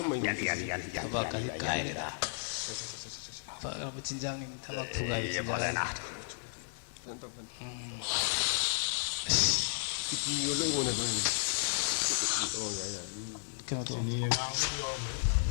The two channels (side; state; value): right; silent; digital silence